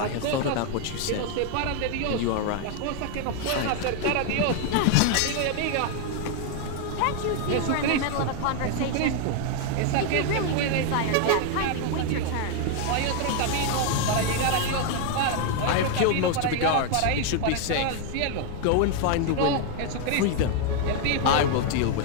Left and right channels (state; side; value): different; both; correlation 0.01